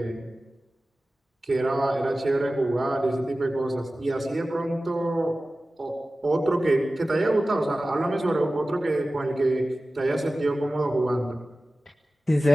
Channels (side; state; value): both; normal; correlation 0.96